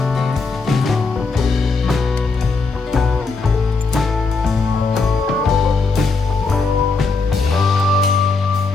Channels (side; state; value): right; quieter; 4.0 dB